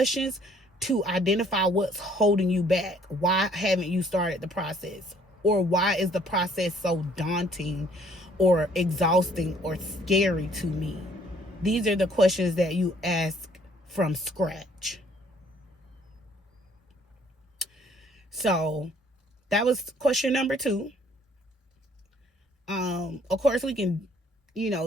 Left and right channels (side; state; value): both; normal; correlation 0.61